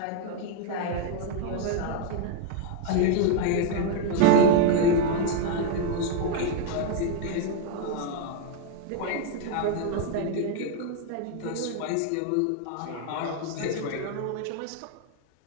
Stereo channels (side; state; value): both; different; correlation 0.00